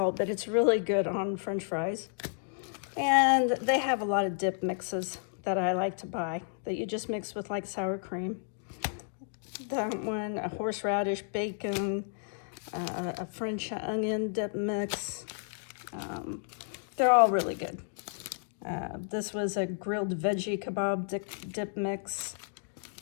but it's really good on French fries. And they have a lot of dip mixes. that I like to buy that you just mix with like sour cream. That one, a horseradish, bacon, a French onion dip mix. They're all really good. This was a grilled veggie kebab dip mix,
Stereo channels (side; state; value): right; silent; digital silence